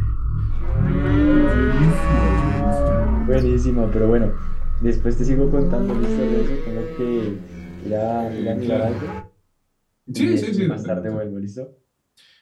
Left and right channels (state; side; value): identical; both; correlation 1.00